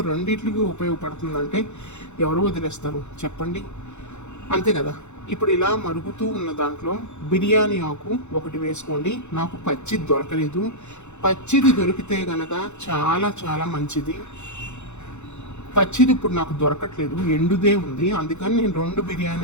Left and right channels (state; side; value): late; right; 0.83 ms